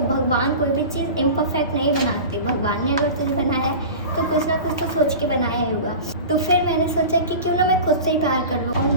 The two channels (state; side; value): inverted; both; correlation -0.34